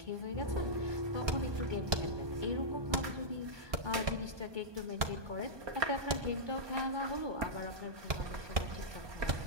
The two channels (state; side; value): late; left; 1.2 ms